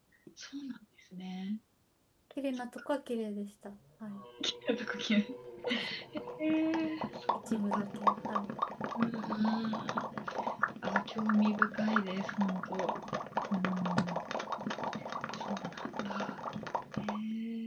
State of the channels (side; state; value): both; identical; correlation 1.00